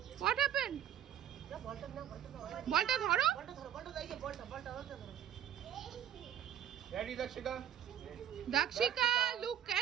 What happened? বলটা ধরো। Ready, Dakshika? দাক্ষিকা, look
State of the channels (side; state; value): left; quieter; 10.2 dB